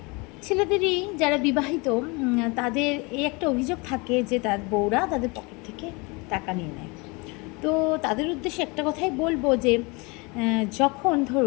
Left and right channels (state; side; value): quieter; right; 27.7 dB